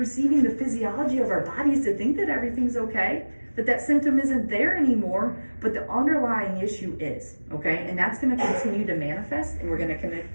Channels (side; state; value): both; inverted; correlation -1.00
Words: the physiology of our bodies to think that everything's okay, that symptom isn't there anymore, but the underlying issue is, okay? And that's going to continue to manifest, and we're going to